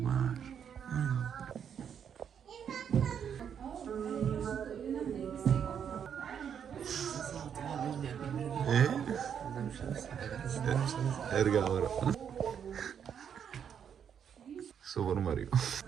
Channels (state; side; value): quieter; left; 8.1 dB